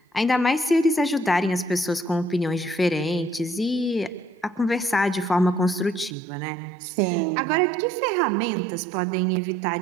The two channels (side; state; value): left; drops out; at 6.2 s